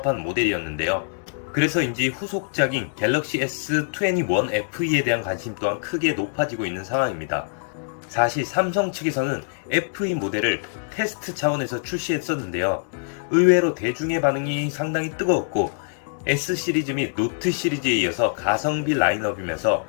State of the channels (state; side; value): silent; right; digital silence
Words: 모델이었는데요. 그래서인지 후속작인 갤럭시 S21FE에 대한 관심 또한 크게 높아지고 있는 상황입니다. 사실 삼성 측에서는 FE 모델을 테스트 차원에서 출시했었는데요. 의외로 대중의 반응이 상당히 뜨거웠고 S 시리즈 및 노트 시리즈에 이어서 가성비 라인업이면서